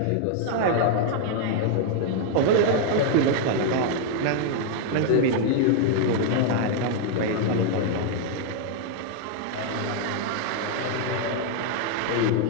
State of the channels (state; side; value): different; both; correlation 0.00